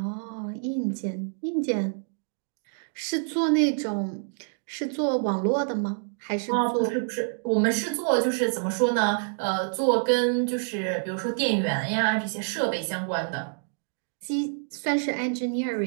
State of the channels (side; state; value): left; silent; digital silence